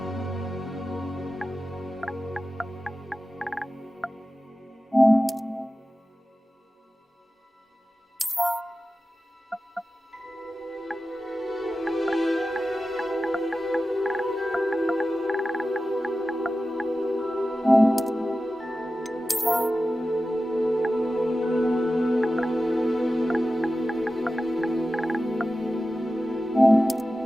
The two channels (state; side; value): normal; both; correlation 0.94